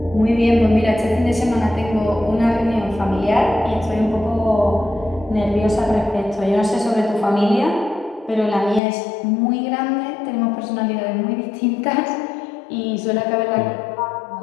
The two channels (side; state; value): right; drops out; at 8.8 s